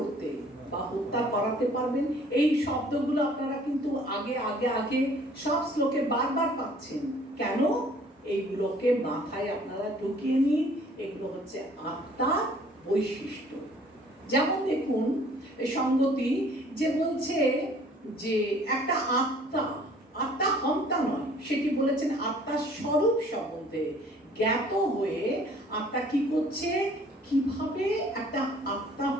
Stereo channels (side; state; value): both; normal; correlation 0.55